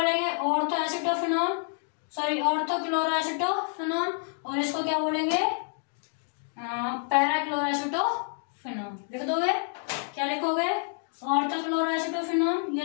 ऑर्थो एसिटोफिनोन, सॉरी ऑर्थो क्लोरोएसिटोफिनोन, और इसको क्या बोलेंगे, पैरा क्लोरोएसिटोफिनोन। लिख दोगे, क्या लिखोगे, ऑर्थो क्लोरोएसिटोफिनोन, ये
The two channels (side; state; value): right; silent; 57 dB below the other